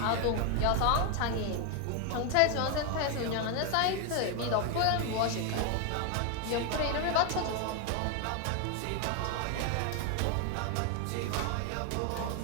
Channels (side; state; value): both; different; correlation 0.01